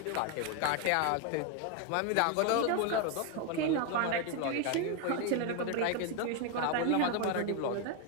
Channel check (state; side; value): different; both; correlation 0.01